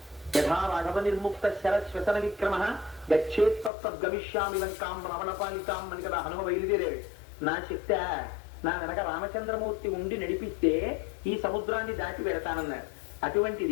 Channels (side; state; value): right; drops out; at 3.7 s